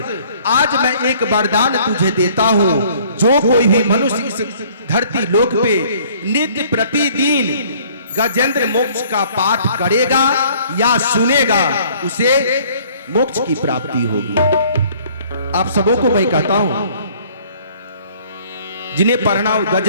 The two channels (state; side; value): inverted; both; correlation -0.56